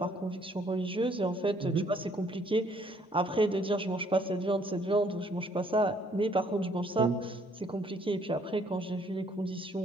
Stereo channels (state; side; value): normal; both; correlation 0.64